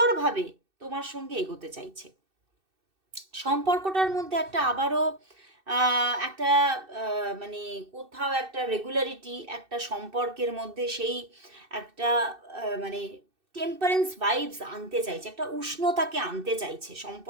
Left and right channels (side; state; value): left; late; 2.6 ms